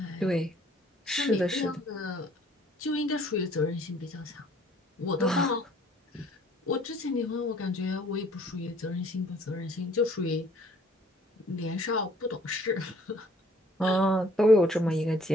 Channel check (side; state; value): both; normal; correlation 0.58